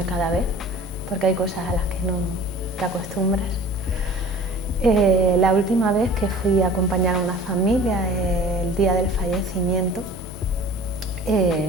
cada vez, porque hay cosas a las que no te acostumbras. La última vez que fui a acompañar a una familia el día del fallecimiento,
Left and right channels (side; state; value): both; normal; correlation 0.44